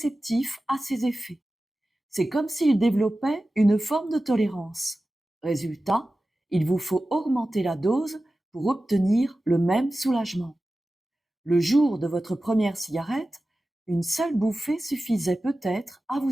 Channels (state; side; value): normal; both; correlation 0.95